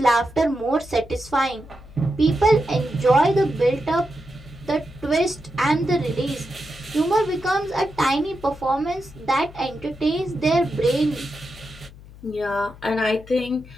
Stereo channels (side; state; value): left; noise; hum, 19 dB below the sound